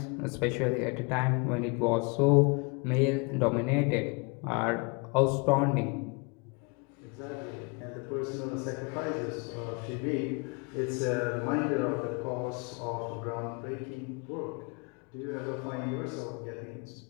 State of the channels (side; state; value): right; quieter; 31.5 dB